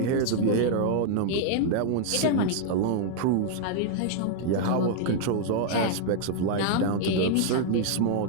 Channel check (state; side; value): different; both; correlation -0.01